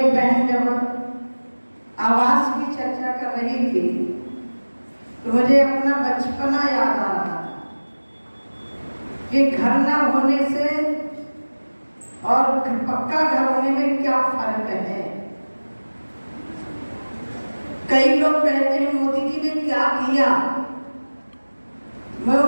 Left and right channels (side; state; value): both; inverted; correlation -1.00